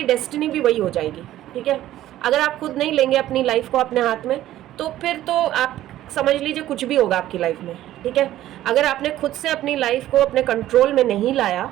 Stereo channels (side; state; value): left; quieter; 13.7 dB